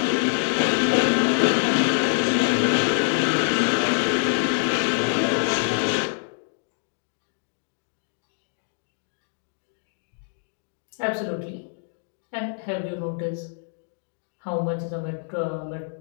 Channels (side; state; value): right; silent; digital silence